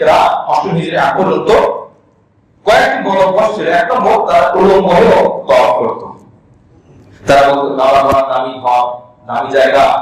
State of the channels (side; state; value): both; identical; correlation 1.00